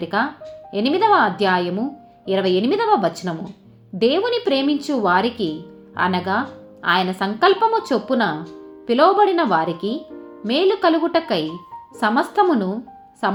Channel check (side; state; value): both; identical; correlation 1.00